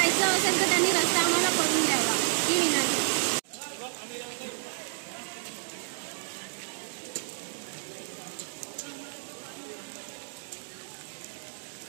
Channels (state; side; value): silent; left; digital silence